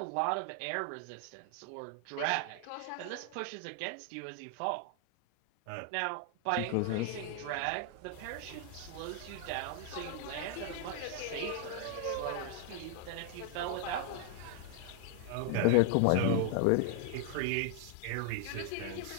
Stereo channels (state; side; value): different; both; correlation 0.00